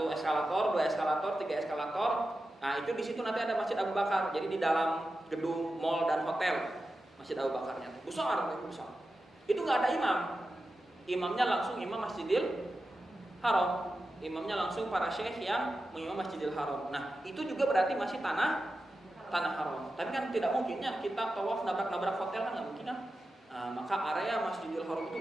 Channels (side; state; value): both; normal; correlation 0.92